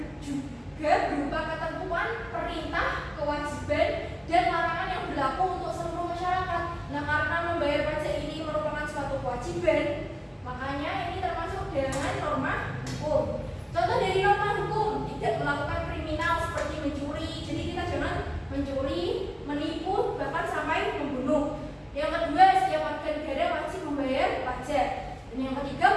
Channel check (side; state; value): both; identical; correlation 1.00